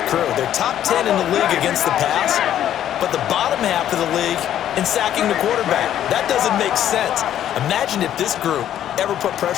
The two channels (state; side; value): quieter; right; 11.0 dB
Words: crew. They're top 10 in the league against the pass, but the bottom half of the league in sacking the quarterback. That doesn't make sense. Imagine if this group ever put